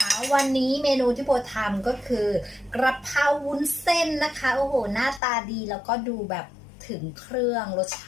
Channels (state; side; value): drops out; right; at 5.2 s